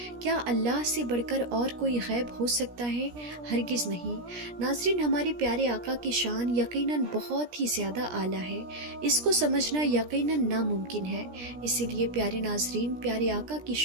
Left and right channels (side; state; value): left; late; 17 ms